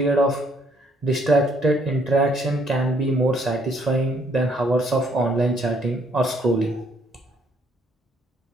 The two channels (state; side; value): normal; both; correlation 0.67